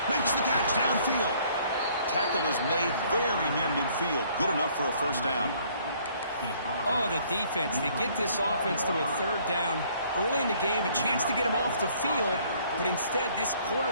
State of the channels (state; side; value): inverted; both; correlation -0.61